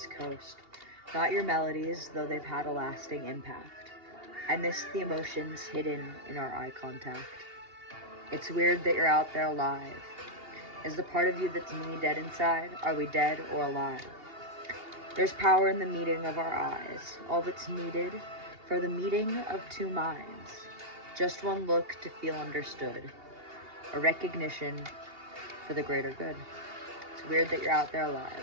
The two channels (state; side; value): late; left; 2.8 ms